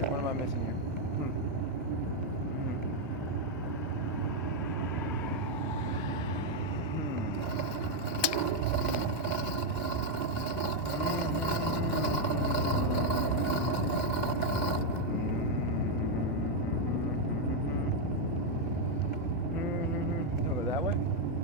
What am I missing here?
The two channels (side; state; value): both; normal; correlation 0.00